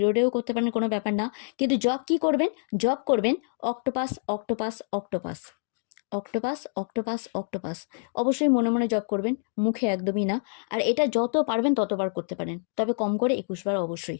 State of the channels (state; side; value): silent; right; digital silence